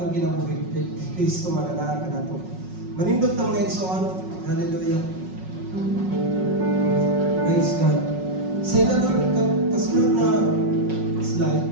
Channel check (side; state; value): left; late; 5.4 ms